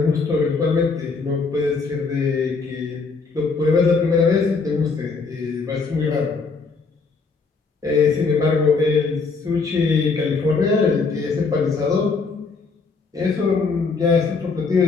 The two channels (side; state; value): right; quieter; 4.5 dB